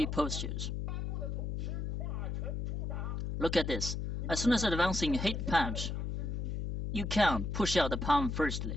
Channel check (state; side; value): noise; left; hum, 2 dB below the sound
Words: postures. Look at this. As soon as advancing hit punch, you can push out the palm